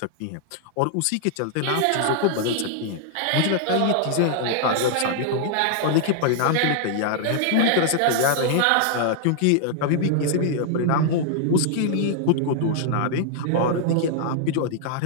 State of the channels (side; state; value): both; different; correlation -0.01